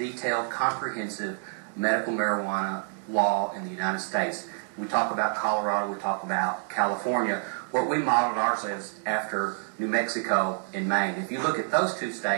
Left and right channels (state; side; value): silent; left; digital silence